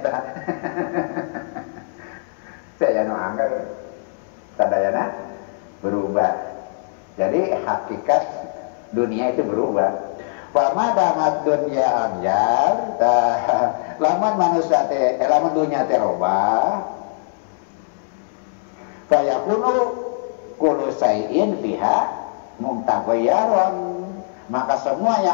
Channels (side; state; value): right; silent; digital silence